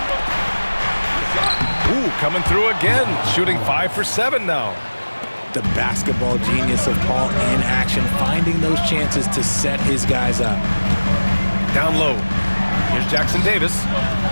Ooh, coming through again. Shooting 5 for 7 now. The basketball genius of Paul in action, finding those chances to set his guys up. Down low. Here's Jackson Davis.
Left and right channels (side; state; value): both; inverted; correlation -1.00